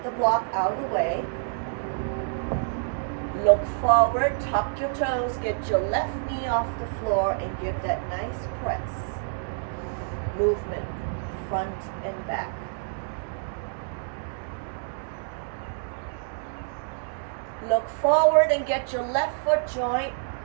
the block out of the way. Look forward, tuck your toes, get your left knee off the floor and give that nice press. Movement, front and back. Look forward and get your left foot joint,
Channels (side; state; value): left; silent; digital silence